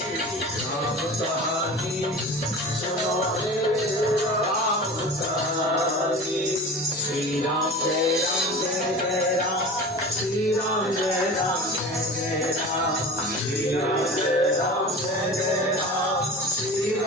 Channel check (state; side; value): normal; both; correlation 0.35